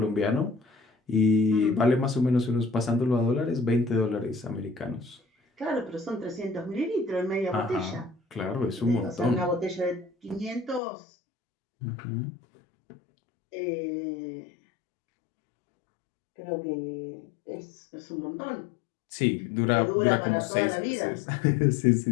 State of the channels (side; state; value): right; drops out; at 10.8 s